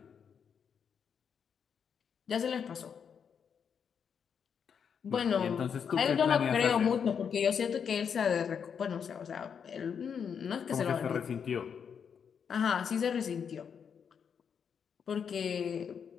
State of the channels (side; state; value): right; quieter; 7.1 dB